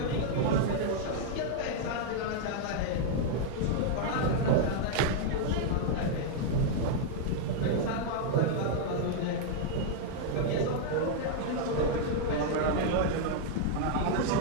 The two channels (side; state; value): both; different; correlation -0.01